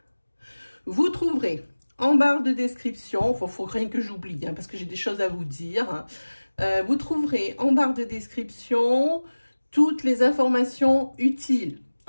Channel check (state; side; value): inverted; both; correlation -1.00